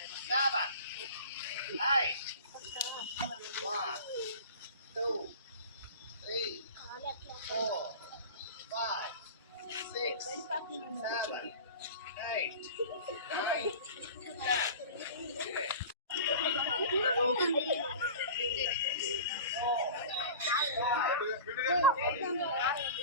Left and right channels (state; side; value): inverted; both; correlation -0.36